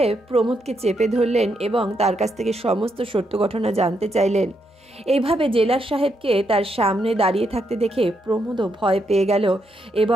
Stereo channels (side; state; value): both; normal; correlation 0.79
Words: প্রমোদকে চেপে ধরলেন এবং তার কাছ থেকে সমস্ত সত্য ঘটনা জানতে চাইলেন। এইভাবে জেলার সাহেবকে তার সামনে দাঁড়িয়ে থাকতে দেখে প্রমোদও ভয় পেয়ে গেল